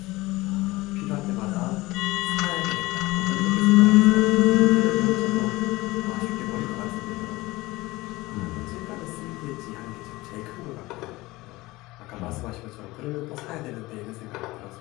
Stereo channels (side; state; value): right; quieter; 20.3 dB